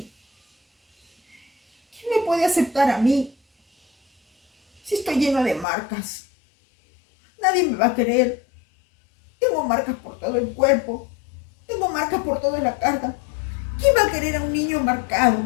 ¿Quién me puede aceptar a mí? Si estoy lleno de marcas, nadie me va a querer. Tengo marcas por todo el cuerpo, tengo marcas por toda la cara. ¿Quién va a querer a un niño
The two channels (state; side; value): drops out; right; at 5.7 s